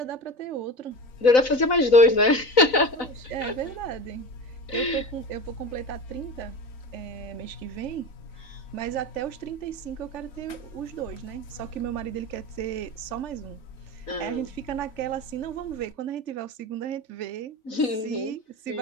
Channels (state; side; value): late; right; 4.0 ms